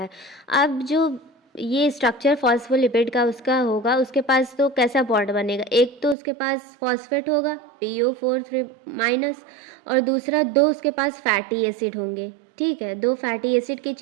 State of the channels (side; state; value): left; drops out; at 6.2 s